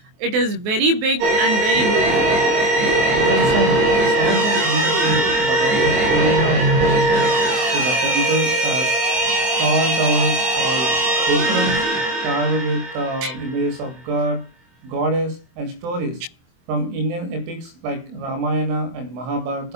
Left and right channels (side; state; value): left; late; 24 ms